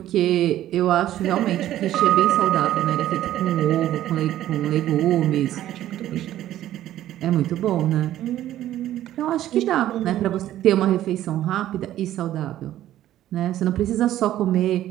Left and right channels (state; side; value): quieter; left; 13.0 dB